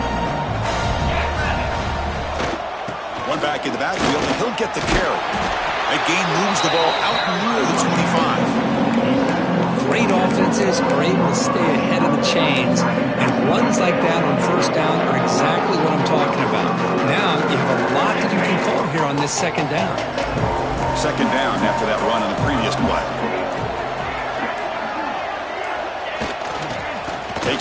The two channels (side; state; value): both; identical; correlation 1.00